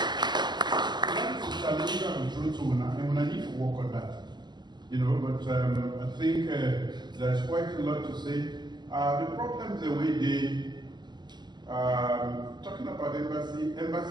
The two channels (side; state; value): left; late; 0.21 ms